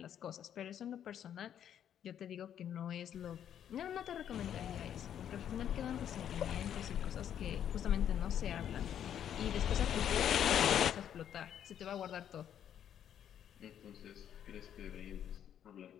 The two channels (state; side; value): quieter; right; 9.7 dB